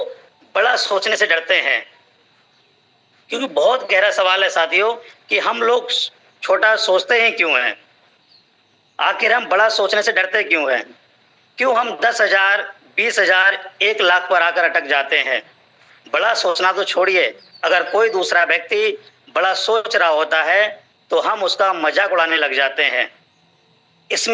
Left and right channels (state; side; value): identical; both; correlation 1.00